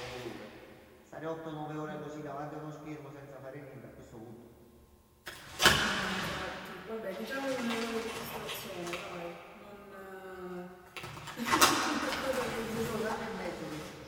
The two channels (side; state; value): both; identical; correlation 1.00